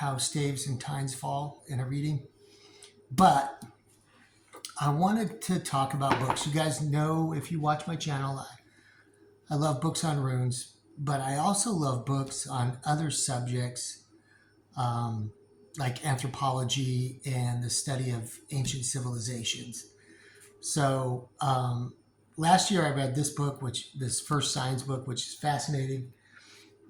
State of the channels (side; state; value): both; identical; correlation 1.00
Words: Staves and Tines Fall in a reading. But I wanted to talk about books. You guys know, if you watch my channel, I love books on runes, but I also love books on other subjects like anthropology and the study of ancient civilizations. So last year I read this book, this first science book, which is fascinating.